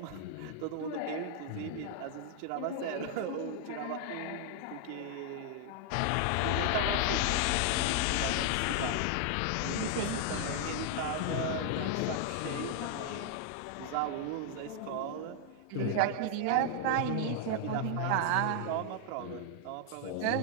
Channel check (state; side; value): different; both; correlation 0.00